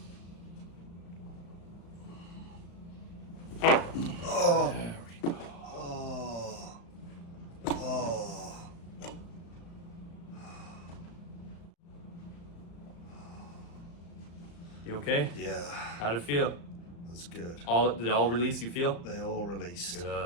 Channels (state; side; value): late; right; 35 ms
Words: Oh. There we go. Oh. Oh. You okay? Yeah, How'd it feel? that's good. Did it all release, you feel? They all released.